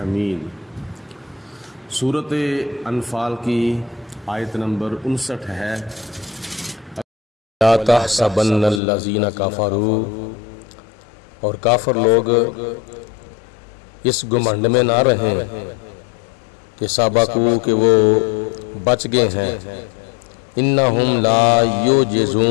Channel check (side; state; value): right; drops out; at 8.8 s